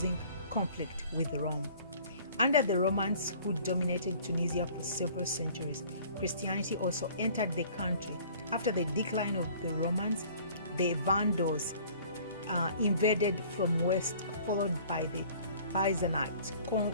conflict with Rome. Under the Romans, who dominated Tunisia for several centuries, Christianity also entered the country. After the decline of the Romans, the Vandals invaded from west, followed by the Byzantines,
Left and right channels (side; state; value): both; inverted; correlation -0.51